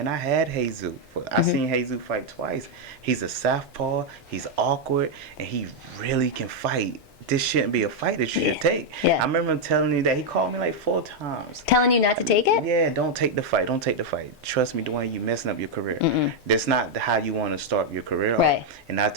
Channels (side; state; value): both; normal; correlation -0.01